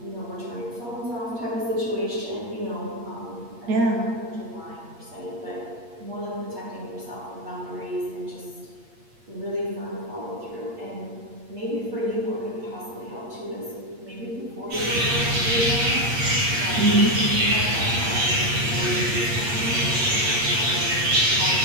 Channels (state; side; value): late; left; 8.6 ms